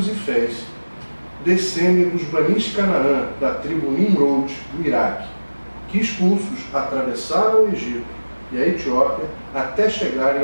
Ifés descendem dos Banis Canaã, da tribo Nimrod, do Iraque, que expulsos atravessaram o Egito e a Etiópia até chegarem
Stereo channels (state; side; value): inverted; both; correlation -1.00